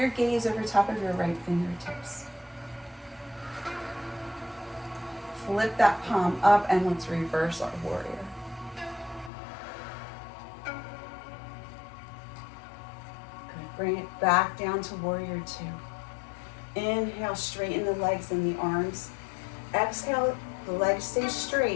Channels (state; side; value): drops out; right; at 9.3 s